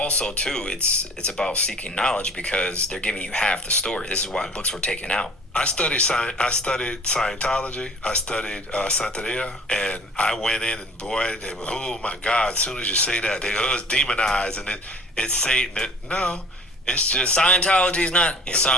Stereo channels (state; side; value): normal; both; correlation 0.46